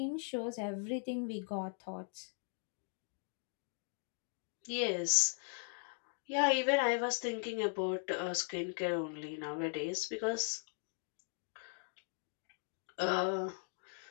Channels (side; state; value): right; silent; 52 dB below the other